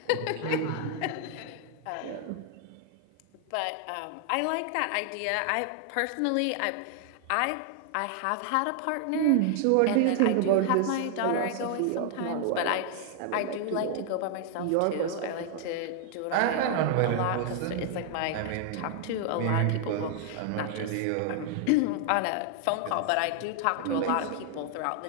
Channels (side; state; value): both; different; correlation 0.00